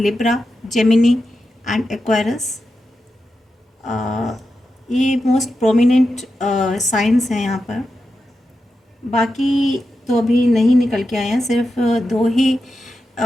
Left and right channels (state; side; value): normal; both; correlation 0.89